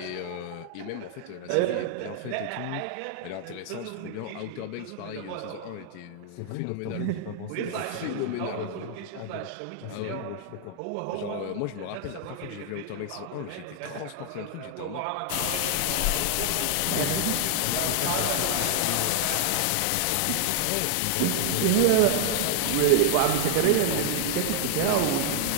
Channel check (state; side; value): different; both; correlation -0.01